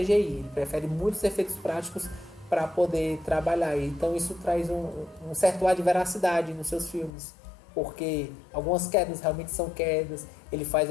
ele prefere muitos efeitos práticos para poder trabalhar. Então isso traz um certo ar de veracidade nos seus filmes, porque algumas quedas realmente são quedas, ele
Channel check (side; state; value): right; drops out; at 7.1 s